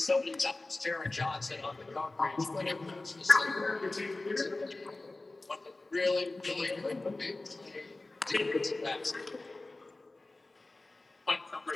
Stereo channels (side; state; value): right; quieter; 3.1 dB